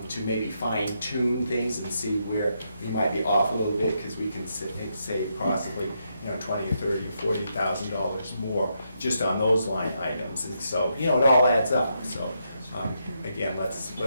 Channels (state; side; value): inverted; both; correlation -0.80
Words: maybe fine tune things and see where we might be off a little bit, because we can save possibly, $20 or $30 or $40,000 more just on those line items. And so, it all adds up. So, again, let's